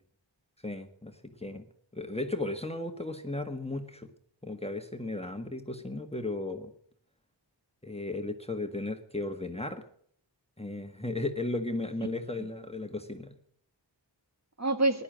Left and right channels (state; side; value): normal; both; correlation 0.15